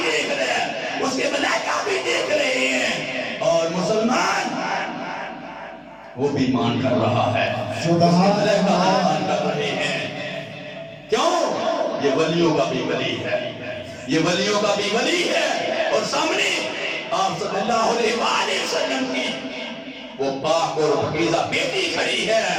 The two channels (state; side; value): identical; both; correlation 1.00